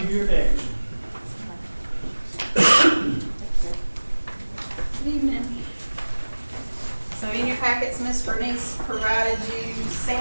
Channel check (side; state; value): both; inverted; correlation -1.00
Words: you're next. Good evening. So in your packets, Ms. Bernice provided you